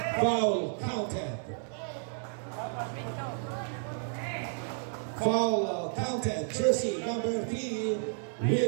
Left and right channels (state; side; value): silent; left; 57 dB below the other